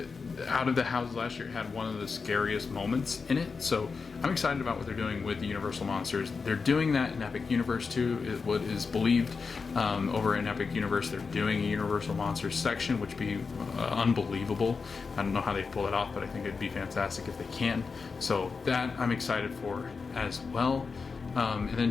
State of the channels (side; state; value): right; quieter; 4.9 dB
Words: out of the houses last year, it had one of the scariest moments in it. So I'm excited about what they're doing with the Universal Monsters. They're doing that in Epic Universe too, is what is believed. Over in Epic Universe, they're doing a Universal Monsters section, which would be unbelievable. I don't know how they pull it off, but I think it'd be fantastic if they can. So that I'm excited for as well. And then